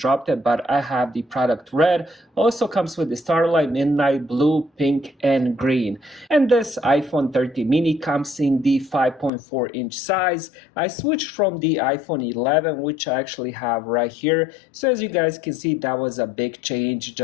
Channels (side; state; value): right; drops out; at 9.3 s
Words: dropped it, but I have the product red. Also comes with the Starlight, Midnight, Blue, Pink, and Green. And this iPhone 13 mini comes in the 5.4 inch size. I switched from the iPhone 11, which I actually have right here. So as you guys can see, that was a big change